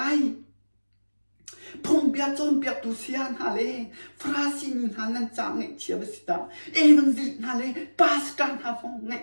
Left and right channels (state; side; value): inverted; both; correlation -1.00